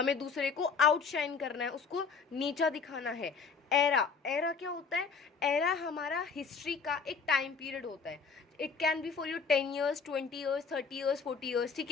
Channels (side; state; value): right; quieter; 5.3 dB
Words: दूसरे को आउटशाइन करना है, उसको नीचा दिखाना है. एरा, एरा क्या होता है? एरा हमारा हिस्ट्री का एक टाइम पीरियड होता है. It can be for your 10 years, 20 years, 30 years, 40 years. ठीक